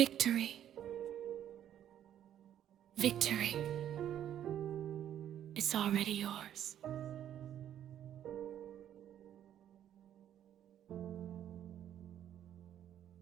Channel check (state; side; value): quieter; left; 10.6 dB